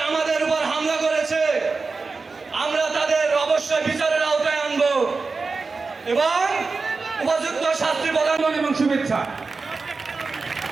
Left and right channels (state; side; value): quieter; left; 4.2 dB